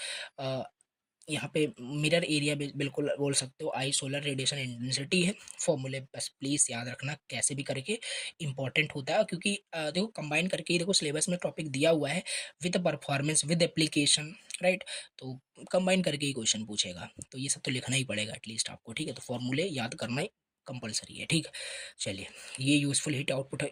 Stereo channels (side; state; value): both; identical; correlation 1.00